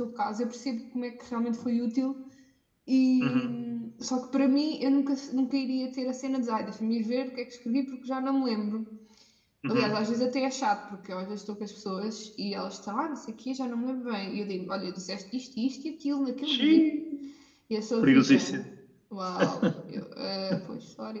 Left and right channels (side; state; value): both; identical; correlation 1.00